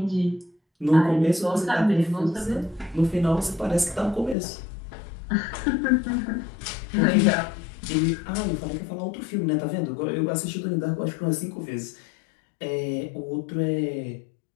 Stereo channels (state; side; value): drops out; right; at 4.4 s